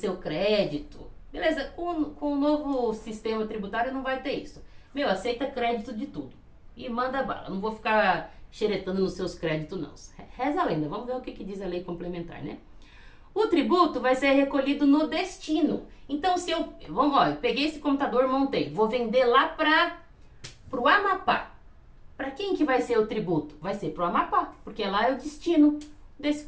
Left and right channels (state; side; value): identical; both; correlation 1.00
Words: crédito. Beleza, com o novo sistema tributário não vai ter isso. Aceita crédito de tudo. E manda bala. Não vou ficar xeretando nos seus créditos, não. Reza a lenda. Vamos ver o que diz a lei complementar, né? O tributo vai ser recolhido no destino. Então, se eu peguei esse computador, montei. Vou vender lá pro Amapá. Para quem que vai ser o tributo? Vai ser pro Amapá, porque lá é o destino. desse